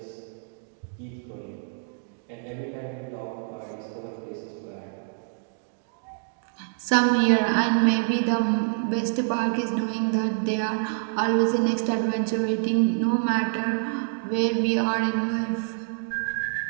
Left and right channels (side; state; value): left; silent; digital silence